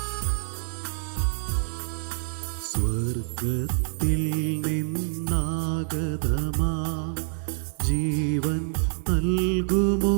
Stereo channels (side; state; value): left; silent; 61 dB below the other